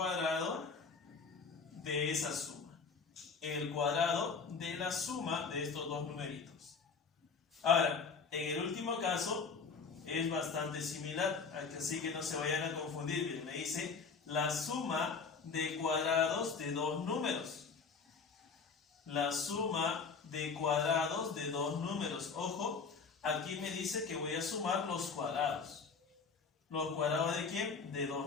de esa suma. El cuadrado de la suma de estos dos numeritos. Ahora, en el último caso es bastante similar, así que no se vayan a confundir. Bien, me dice la suma de cuadrados de dos números. La suma de cuadrados de dos números. Ojo, aquí me dice que voy a sumar los cuadrados. ¿Los cuadrados de quién? De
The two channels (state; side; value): quieter; right; 5.2 dB